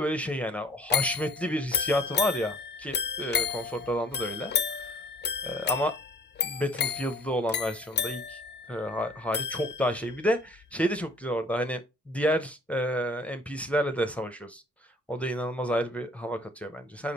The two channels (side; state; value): both; normal; correlation 0.51